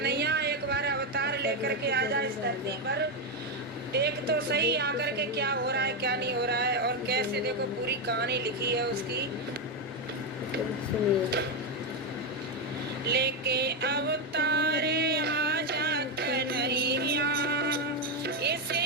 एक बार अवतार लेकर के आ जा इस धरती पर, देख तो सही आकर के क्या हो रहा है क्या नहीं हो रहा है। और कैसे देखो पूरी कहानी लिखी है उसकी। लेके अवतारे आजा कन्हैया, इसे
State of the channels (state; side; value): normal; both; correlation 0.06